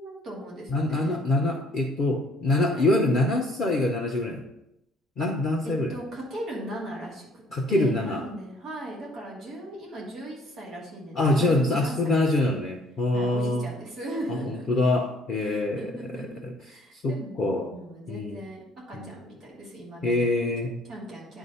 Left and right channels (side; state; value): both; normal; correlation 0.59